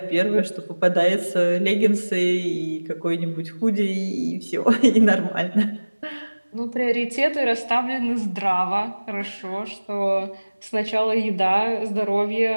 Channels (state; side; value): inverted; both; correlation -1.00